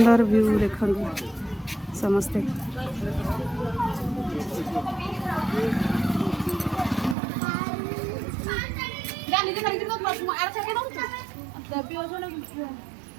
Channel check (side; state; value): left; drops out; at 7.2 s